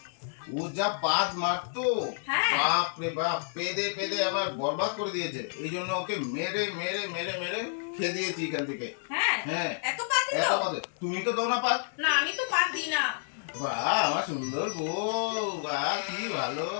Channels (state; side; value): silent; right; digital silence